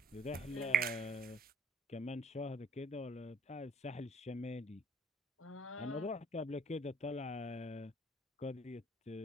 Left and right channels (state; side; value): normal; both; correlation 0.58